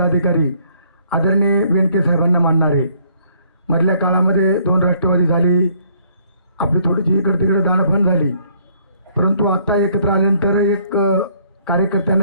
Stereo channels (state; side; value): inverted; both; correlation -0.62